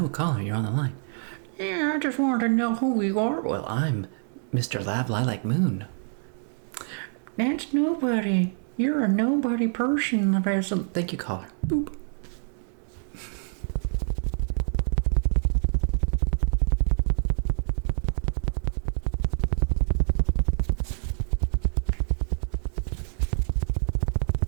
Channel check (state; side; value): silent; left; 60 dB below the other